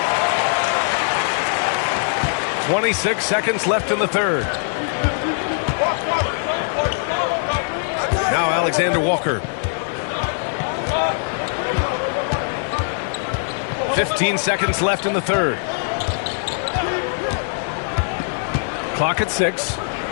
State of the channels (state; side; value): silent; right; 65 dB below the other